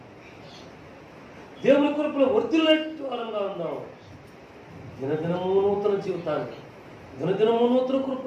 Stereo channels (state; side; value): identical; both; correlation 1.00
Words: దేవుని కృపలో వర్ధిల్లేట్టు వారంగా ఉందాం. దినదినము నూతన జీవితానికి, దినదినము నూతన